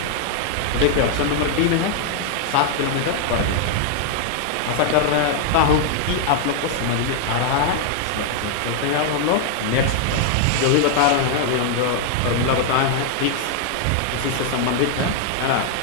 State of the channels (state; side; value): different; both; correlation 0.00